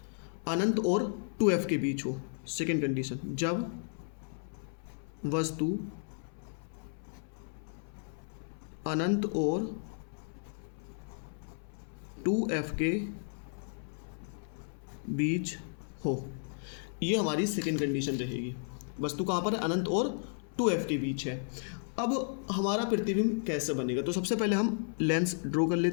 अनंत और 2F के बीच हो। सेकेंड कंडीशन, जब वस्तु अनंत और 2F के बीच हो, ये हमारी सेकेंड कंडीशन रहेगी। वस्तु कहाँ पर है, अनंत और 2F के बीच है। अब हमारा प्रतिबिंब कैसे बनेगा, तो सबसे पहले हम लेंस ड्रॉ कर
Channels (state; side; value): silent; right; 55 dB below the other